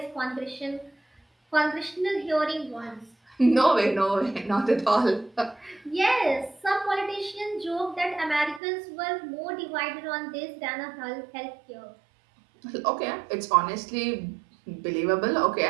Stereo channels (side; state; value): left; drops out; at 8.6 s